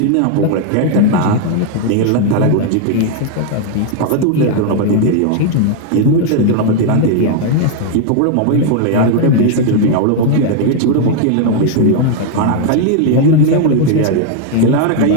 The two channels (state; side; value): different; both; correlation 0.00